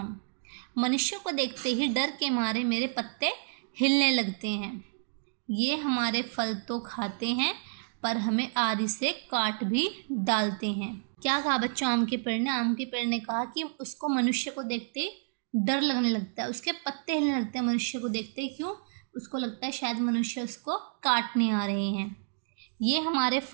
मनुष्यों को देखते ही डर के मारे मेरे पत्ते हिलने लगते हैं। ये हमारे फल तो खाते हैं, पर हमें आरी से काट भी डालते हैं। क्या कहा बच्चों आम के पेड़ ने? आम के पेड़ ने कहा कि उसको मनुष्य को देखते डर लगने लगता है, उसके पत्ते हिलने लगते हैं मनुष्य को देखते। क्यों? उसको लगता है शायद मनुष्य उसको काटने आ रहे हैं। ये हमारे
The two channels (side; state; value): left; silent; digital silence